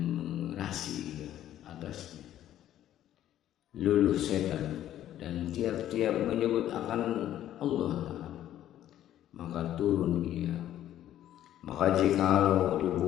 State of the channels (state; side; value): quieter; right; 12.1 dB